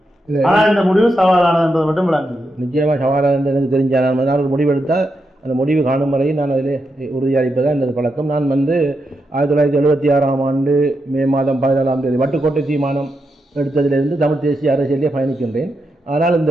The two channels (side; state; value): both; normal; correlation 0.85